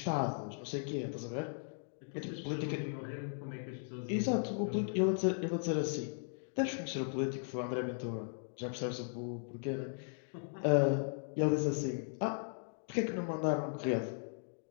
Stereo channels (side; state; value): right; silent; digital silence